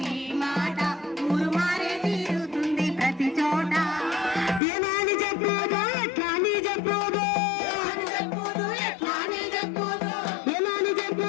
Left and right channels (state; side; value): drops out; right; at 4.6 s